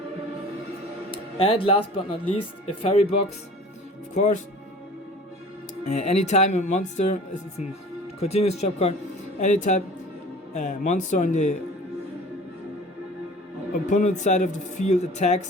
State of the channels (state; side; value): normal; both; correlation 0.44